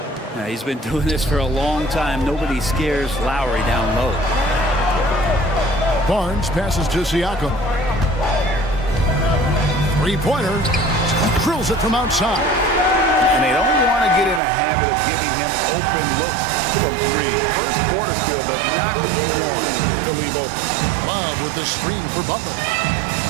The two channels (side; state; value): left; drops out; at 14.4 s